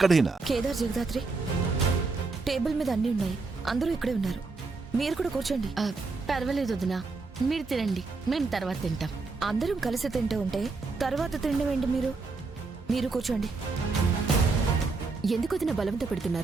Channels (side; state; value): left; quieter; 4.0 dB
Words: కేదార్, జగదాత్రి, టేబుల్ మీద అన్ని ఉన్నాయి. అందరూ ఇక్కడే ఉన్నారు. మీరు కూడా కూర్చోండి. పర్వాలేదు వదినా, మీరు తినండి, మేము తర్వాత తింటాం. అందరం కలిసి తింటూ ఉంటే తర్వాత తినడం ఏంటి? మీరు కూర్చోండి. ఎందుకు వదిన బలవంత